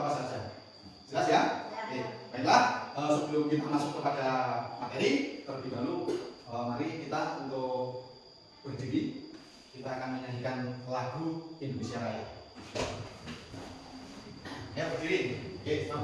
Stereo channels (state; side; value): identical; both; correlation 1.00